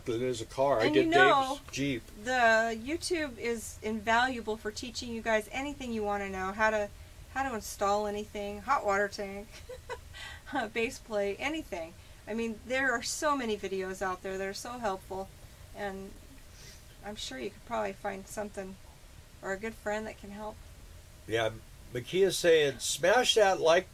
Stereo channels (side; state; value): both; identical; correlation 1.00